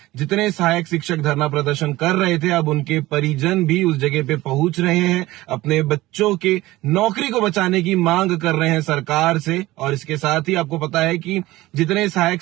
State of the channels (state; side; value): quieter; left; 17.9 dB